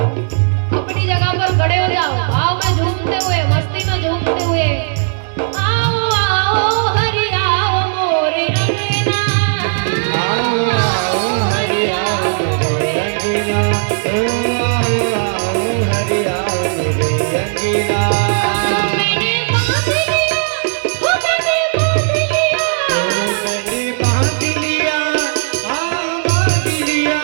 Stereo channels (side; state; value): left; silent; digital silence